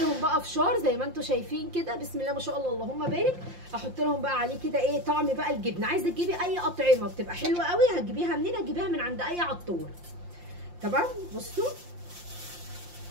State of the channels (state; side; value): late; left; 5.7 ms